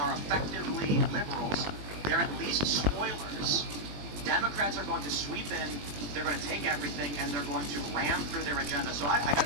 effectively liberals. They're at least spoilers. Democrats are going to sweep in, they're going to take everything, and they're going to ram through their agenda. So I gotta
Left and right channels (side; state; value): left; late; 20 ms